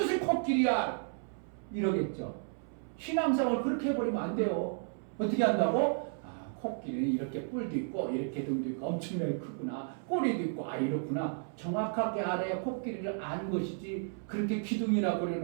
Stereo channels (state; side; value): silent; left; 56 dB below the other